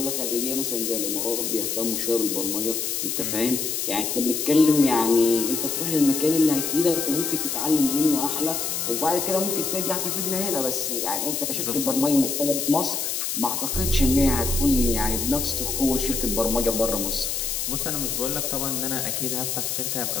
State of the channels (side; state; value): left; noise; hiss, 1 dB below the sound